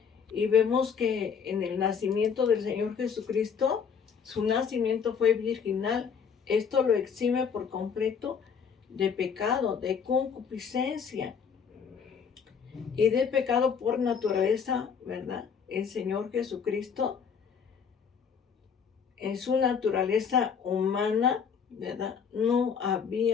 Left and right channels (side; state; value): right; quieter; 6.7 dB